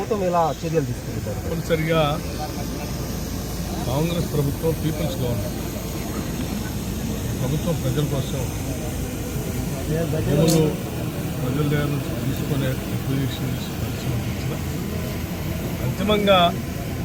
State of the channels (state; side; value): identical; both; correlation 1.00